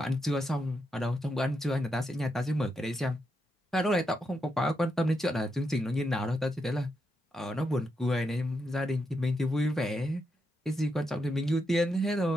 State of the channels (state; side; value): normal; both; correlation 0.83